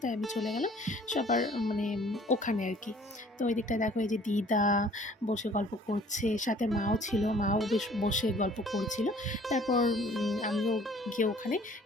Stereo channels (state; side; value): normal; both; correlation 0.54